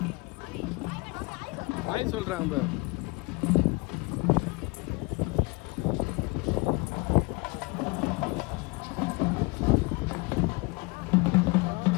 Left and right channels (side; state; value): right; quieter; 26.7 dB